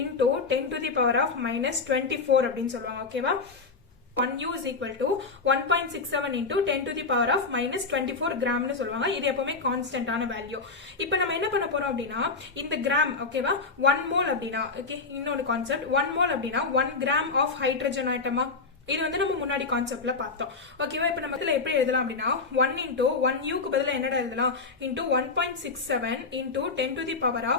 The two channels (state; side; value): quieter; right; 4.2 dB